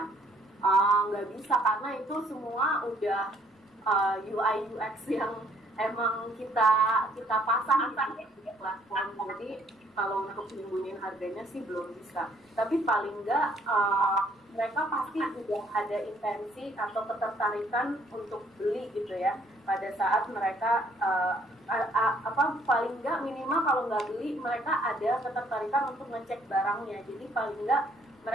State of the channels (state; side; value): normal; both; correlation 0.64